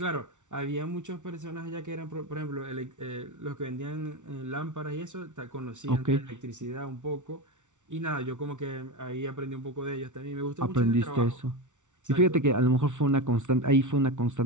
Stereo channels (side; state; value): left; late; 0.86 ms